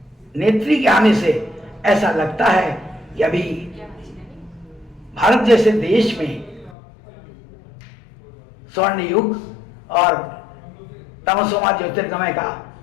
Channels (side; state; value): right; drops out; at 6.8 s